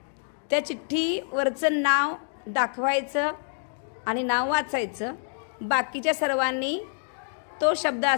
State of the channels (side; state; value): right; silent; digital silence